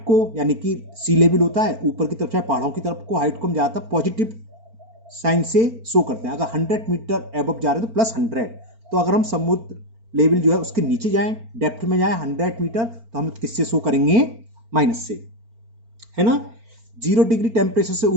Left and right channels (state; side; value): late; left; 4.4 ms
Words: यानी कि सी लेवल होता है ऊपर की तरफ चाहे पहाड़ों की तरफ को, हाइट को हम ज़्यादातर पॉजिटिव साइन से शो करते हैं. अगर 100 मीटर एबव जा रहे हैं तो +100. तो अगर हम समुद्र लेवल जो है उसके नीचे जाएं, डेप्थ में जाएं 100 मीटर, तो हम किससे शो करेंगे? माइनस से, है ना. 0 डिग्री टेम्परेचर से